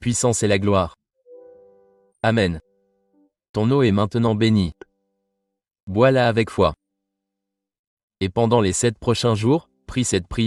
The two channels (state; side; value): identical; both; correlation 1.00